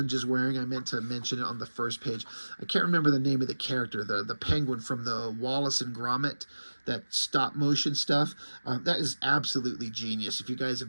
is wearing. I meant to mention it on the first page. I can't remember the name of the character, the penguin from the Wallace and Gromit, that stop motion stuff. That is absolutely genius. If you guys have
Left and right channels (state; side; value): inverted; both; correlation -1.00